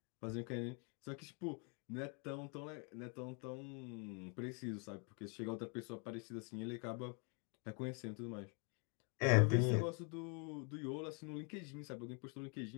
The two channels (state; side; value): quieter; right; 36.5 dB